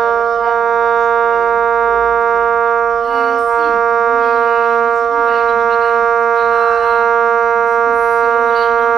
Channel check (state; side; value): quieter; left; 7.4 dB